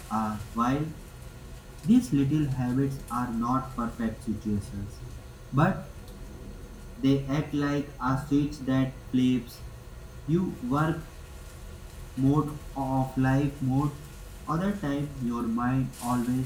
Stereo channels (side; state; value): both; identical; correlation 1.00